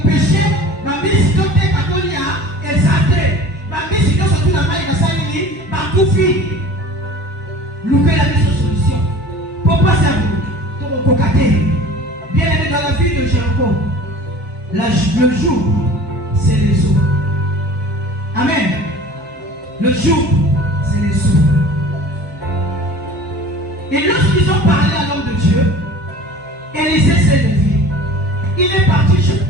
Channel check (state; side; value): normal; both; correlation 0.42